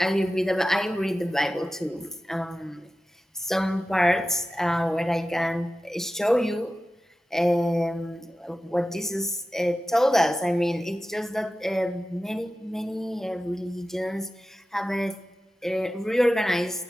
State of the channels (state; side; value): normal; both; correlation 0.94